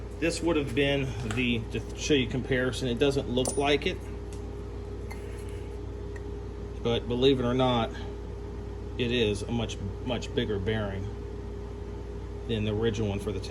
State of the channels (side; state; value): both; identical; correlation 1.00